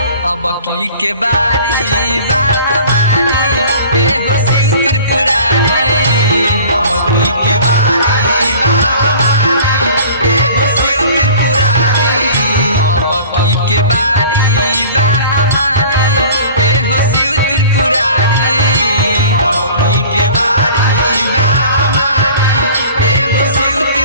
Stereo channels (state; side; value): inverted; both; correlation -0.45